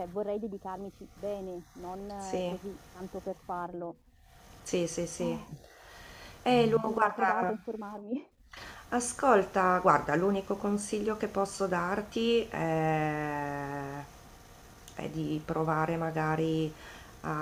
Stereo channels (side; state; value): both; identical; correlation 1.00